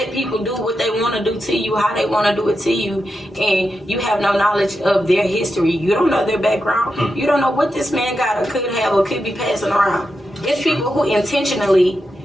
people do what they want to do to you, how they want to do it to you, and you have no knowledge of their history. You don't know their background. You don't know what this man got or could have or could be passing around. It's people who intentionally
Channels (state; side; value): normal; both; correlation 0.88